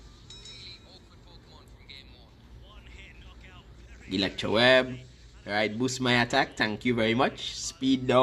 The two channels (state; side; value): identical; both; correlation 1.00